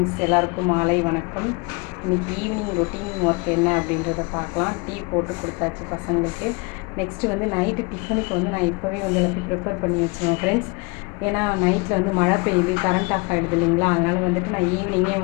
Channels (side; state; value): right; quieter; 29.2 dB